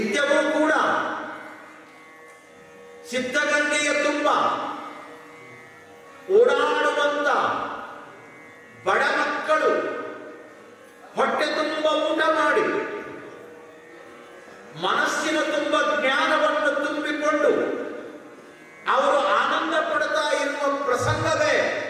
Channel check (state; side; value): identical; both; correlation 1.00